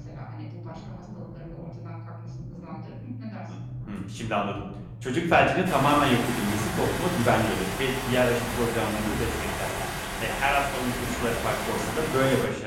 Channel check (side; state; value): both; identical; correlation 1.00